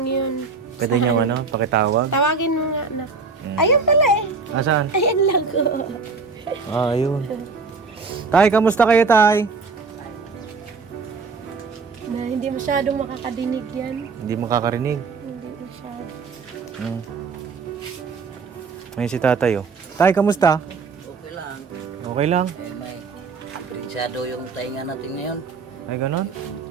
yun. Pwede nyo pakitawag? Tawagin mo nga na. Ayun pala eh. Asan? Ayan lang ko. Ayun. Tay, kamusta kayo, tay? Na hindi masyadong makakadinig yan. Hindi makakarinig. Hindi masyado. Ngayon si tatay, oh. Tay, kamusta? Okay lang. Okay lang. May aprensado yung tainga natin ngayon. Ay, ganon?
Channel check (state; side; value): quieter; left; 4.6 dB